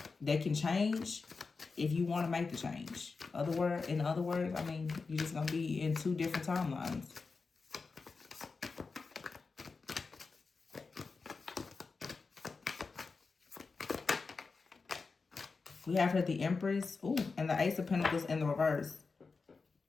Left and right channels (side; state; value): right; quieter; 4.4 dB